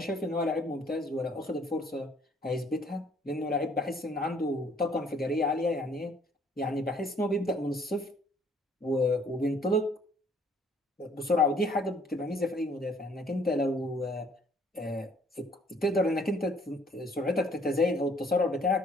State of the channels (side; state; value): both; normal; correlation 0.61